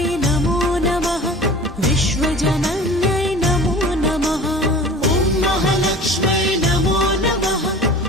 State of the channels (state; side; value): normal; both; correlation 0.40